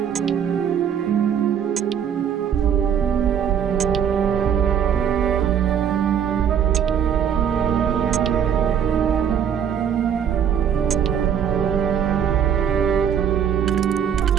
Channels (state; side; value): quieter; left; 8.4 dB